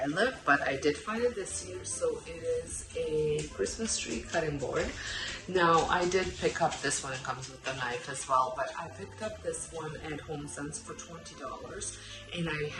live, but I did find it this year. So it is a Christmas tree cutting board. Now I did pick up this one, it comes with a knife as well, but I picked up this one at HomeSense for $20, and I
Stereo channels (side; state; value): both; identical; correlation 1.00